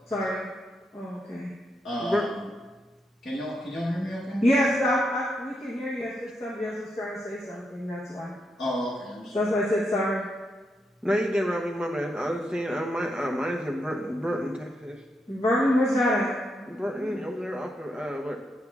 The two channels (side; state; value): both; normal; correlation 0.82